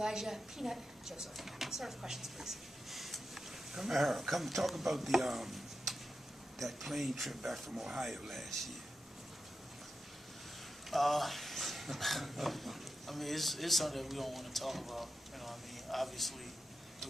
Peanut Joseph. Start with questions, please. Kamara, come talk about the that plane trip back from Ohio last year. I mean, it's something that we don't want to talk about. You know, I mean, obviously, it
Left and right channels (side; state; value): both; normal; correlation 0.89